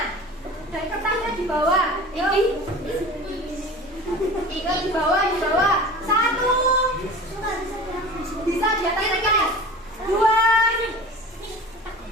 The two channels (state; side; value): normal; both; correlation 0.38